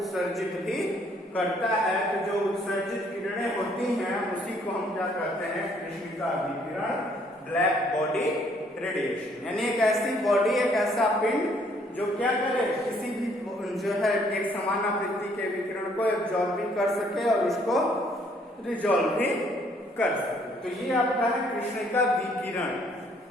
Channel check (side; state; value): both; normal; correlation 0.65